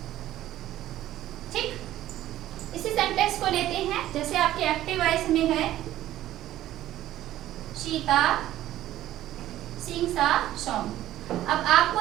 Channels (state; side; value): quieter; left; 13.7 dB